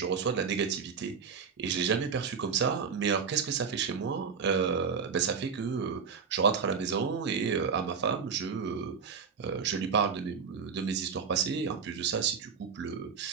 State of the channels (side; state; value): left; quieter; 6.0 dB